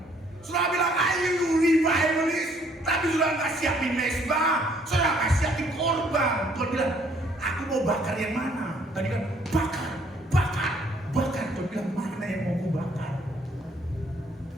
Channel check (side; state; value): both; normal; correlation 0.64